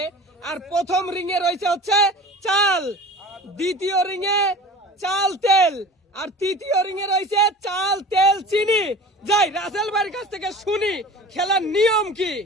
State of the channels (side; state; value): both; normal; correlation 0.38